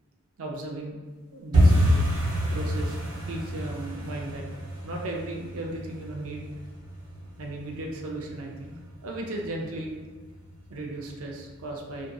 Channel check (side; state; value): both; normal; correlation 0.79